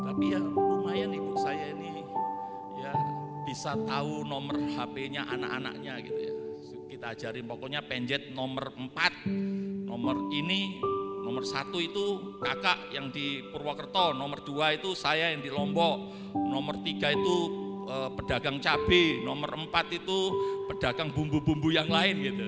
Tapi ya lumayan ibu saya ini ya bisa tahu nomor HP-nya anak-anaknya gitu ya. Kita ajarin pokoknya penjet nomor 4, nomor ini, nomor 1 itu kakak yang di Purwokerto, nomor 2 itu saya yang di Lombok, nomor 3 itu pedagang cabai, nomor 4 itu pedagang bumbu-bumbu yang lain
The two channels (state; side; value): identical; both; correlation 1.00